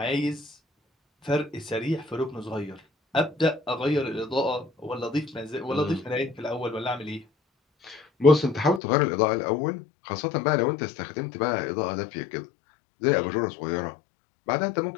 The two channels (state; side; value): drops out; right; at 8.8 s